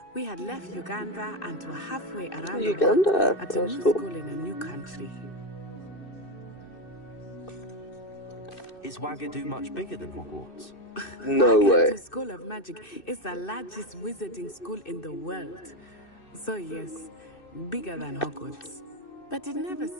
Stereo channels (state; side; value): late; right; 2.6 ms